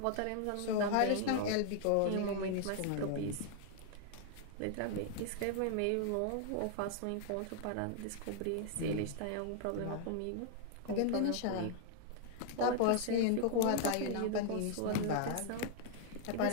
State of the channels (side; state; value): both; different; correlation 0.00